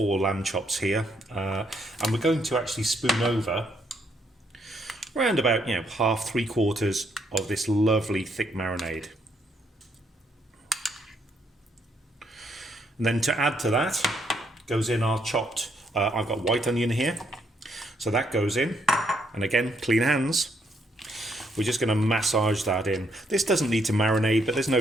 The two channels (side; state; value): both; normal; correlation 0.73